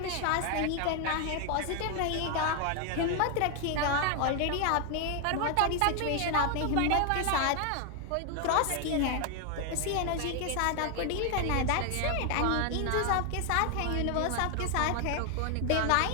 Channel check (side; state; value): both; different; correlation 0.00